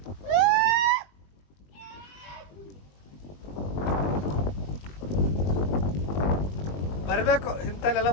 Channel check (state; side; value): late; right; 21 ms